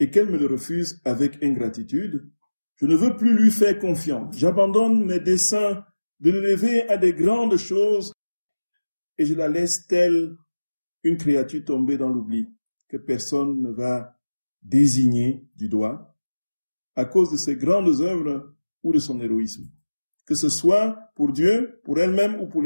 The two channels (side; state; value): both; inverted; correlation -1.00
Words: qu'elle me le refuse avec ingratitude. Je ne veux plus lui faire confiance. J'abandonne mes desseins de l'élever à des grandes choses et je la laisse telle une créature tombée dans l'oubli que personne ne va désigner du doigt à cause de ses grandes œuvres ou de son héroïsme, que ce soit pour Dieu, pour elle-même ou pour